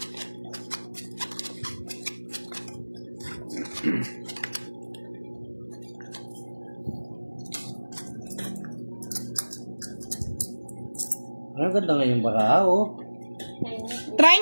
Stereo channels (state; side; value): inverted; both; correlation -1.00